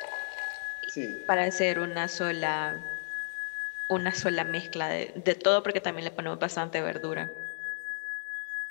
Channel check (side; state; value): right; silent; 57 dB below the other